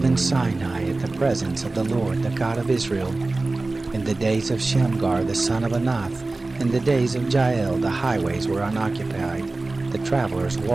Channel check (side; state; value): left; quieter; 3.2 dB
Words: Sinai at the presence of the Lord, the God of Israel. In the days of Shamgar the son of Anath, in the days of Jael, the highways were unoccupied. The travelers